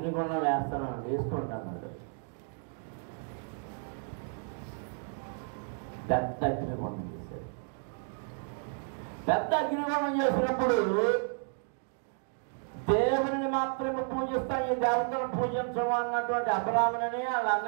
వేస్తాను వేసుకుంటా అన్నాడు. పెద్ద అగ్నిగుండం చేశాడు. పెద్ద అగ్నిగుండం చేసినప్పుడు దేవుని మాత్రమే పూజిస్తాం, ఈ దేవతను పూజించము అన్నటువంటి అబ్రాహాముని వాళ్ళ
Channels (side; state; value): left; silent; 56 dB below the other